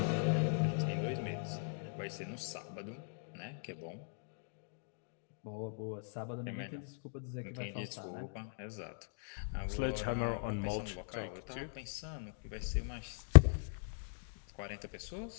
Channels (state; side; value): silent; right; digital silence